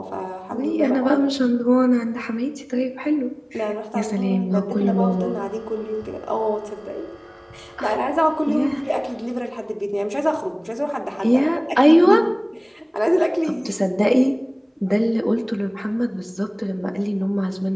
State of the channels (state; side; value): identical; both; correlation 1.00